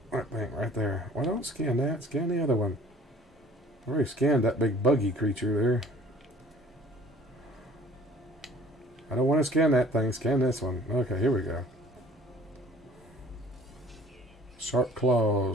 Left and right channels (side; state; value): both; normal; correlation 0.52